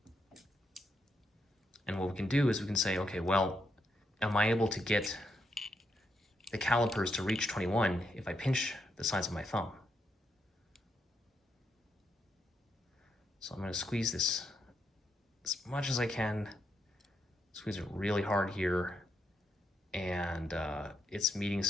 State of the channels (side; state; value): both; normal; correlation 0.79